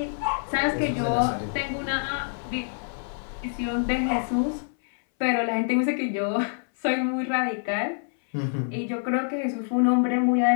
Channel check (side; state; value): right; silent; 61 dB below the other